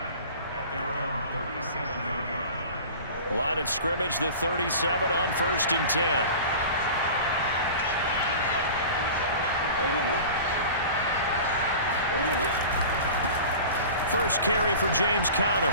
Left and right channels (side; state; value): both; inverted; correlation -0.38